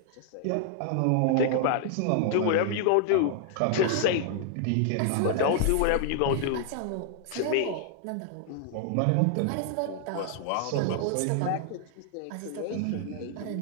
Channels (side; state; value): both; different; correlation 0.00